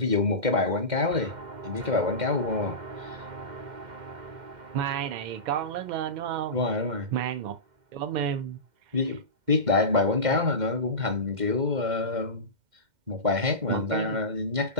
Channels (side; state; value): left; late; 2.1 ms